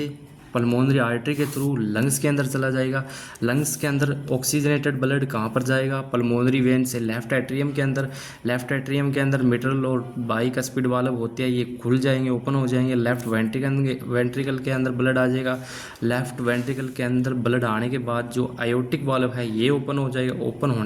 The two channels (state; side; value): identical; both; correlation 1.00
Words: पल्मोनरी आर्टरी के थ्रू लंग्स के अंदर चला जाएगा। लंग्स के अंदर ऑक्सीजनेटेड ब्लड कहाँ पर जाएगा? पल्मोनरी वेन से लेफ्ट एट्रियम के अंदर। लेफ्ट एट्रियम के अंदर मिट्रल और बाइकस्पिड वाल्व होते हैं, ये खुल जाएंगे, ओपन हो जाएंगे। लेफ्ट वेंट्रिकल के अंदर ब्लड आ जाएगा। लेफ्ट वेंट्रिकल के अंदर ब्लड आने के बाद जो आयोटिक वाल्व है ये ओपन हो जाएगा। ओपन